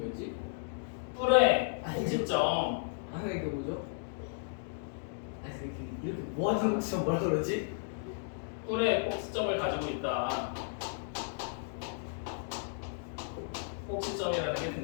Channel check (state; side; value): silent; right; digital silence